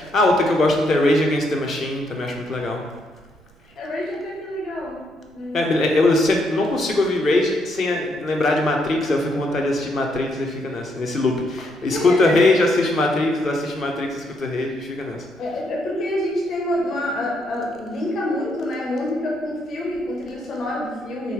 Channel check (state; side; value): noise; right; rumble, 30 dB below the sound